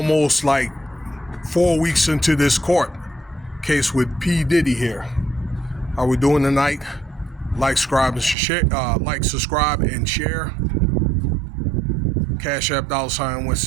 like 4 weeks into this court case with P. Diddy here. How we doing tonight? Like, subscribe, and share. Subscribe, and share. Cash App $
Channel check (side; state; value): left; drops out; at 8.3 s